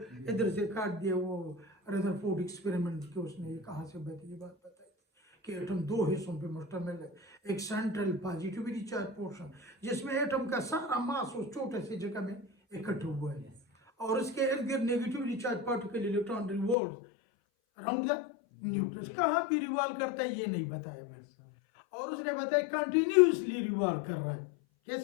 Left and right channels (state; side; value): drops out; right; at 16.8 s